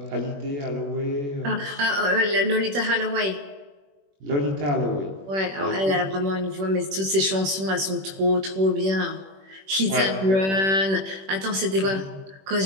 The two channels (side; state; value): left; late; 21 ms